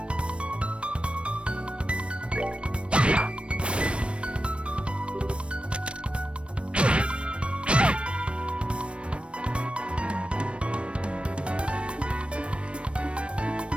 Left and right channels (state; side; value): late; left; 0.059 ms